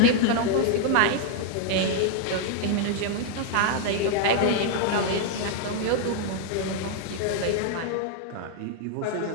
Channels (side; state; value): both; different; correlation 0.00